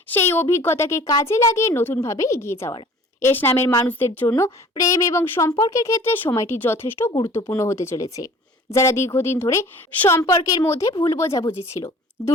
সেই অভিজ্ঞতাকে কাজে লাগিয়ে নতুনভাবে এগিয়ে যাওয়ার। এস নামের মানুষদের জন্য প্রেম এবং সম্পর্কের ক্ষেত্রে সময়টি যথেষ্ট গুরুত্বপূর্ণ হতে চলেছে। যারা দীর্ঘদিন ধরে সম্পর্কের মধ্যে ভুল বোঝাবুঝি ছিল,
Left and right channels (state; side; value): normal; both; correlation 0.48